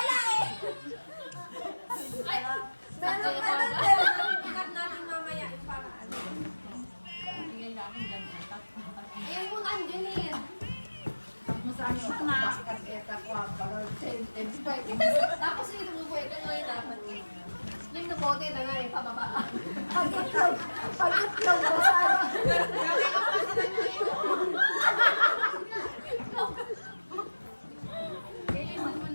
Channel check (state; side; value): inverted; both; correlation -1.00